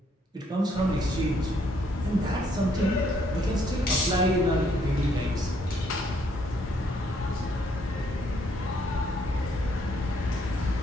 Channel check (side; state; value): both; normal; correlation 0.69